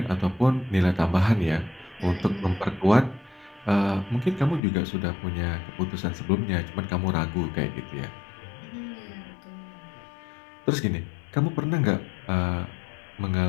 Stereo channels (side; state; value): right; drops out; at 4.6 s